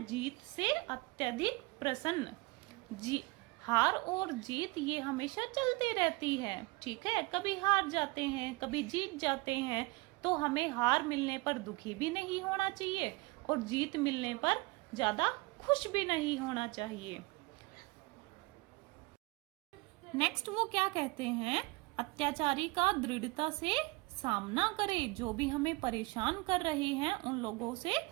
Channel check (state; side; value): quieter; left; 24.0 dB